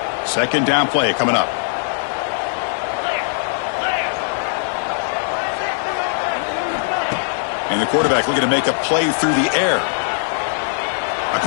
Second down play coming up. And the quarterback looking to make a play through the air. A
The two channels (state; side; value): silent; right; digital silence